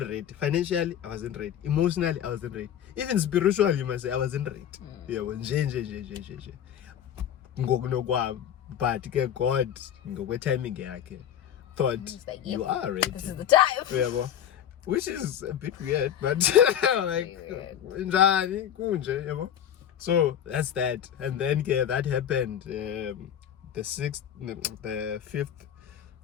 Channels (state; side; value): quieter; right; 9.8 dB